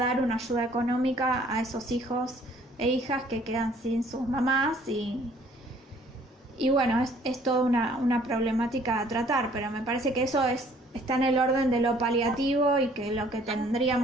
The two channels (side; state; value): both; normal; correlation 0.58